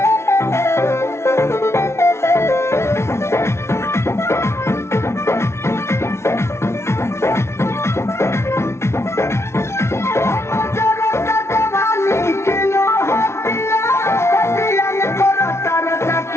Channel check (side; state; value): right; late; 0.13 ms